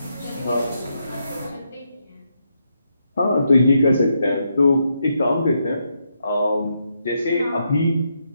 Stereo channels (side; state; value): both; inverted; correlation -0.80